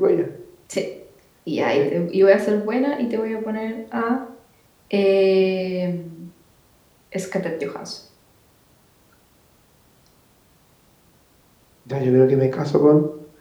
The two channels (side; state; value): both; identical; correlation 1.00